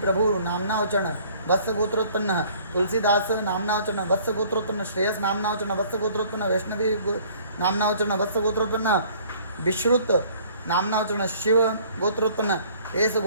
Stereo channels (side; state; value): both; inverted; correlation -0.55